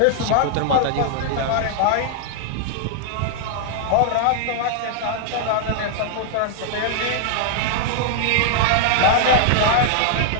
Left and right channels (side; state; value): both; different; correlation -0.01